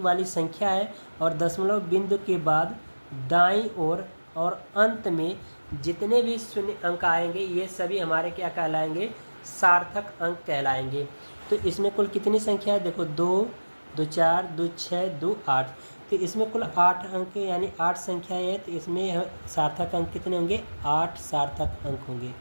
वाली संख्या है और दशमलव बिंदु के बाद दाईं ओर और अंत में जितने भी शून्य अंक आएंगे ये सभी हमारे क्या कहलाएंगे, सार्थक अंक कहलाएंगे। तो इसमें कुल कितनी संख्या है, देखो 2 2 4 2 6 2 8, तो इसमें कुल 8 अंक यानी 8 संख्या है। तो इसमें सार्थक अंक कितने होंगे, 8 सार्थक अंक होंगे,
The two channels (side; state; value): both; inverted; correlation -1.00